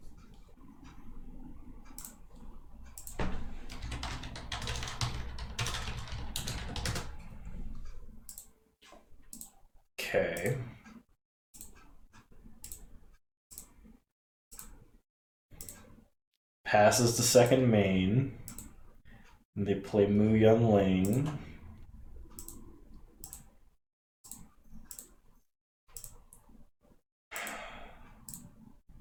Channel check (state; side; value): identical; both; correlation 1.00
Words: Okay. Passes to second main. And they play Mu Yun Ling.